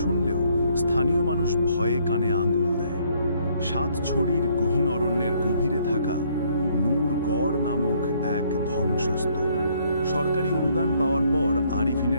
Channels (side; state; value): both; inverted; correlation -0.66